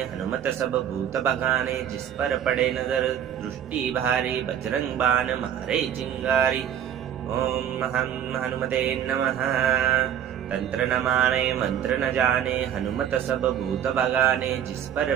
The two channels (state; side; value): quieter; left; 9.7 dB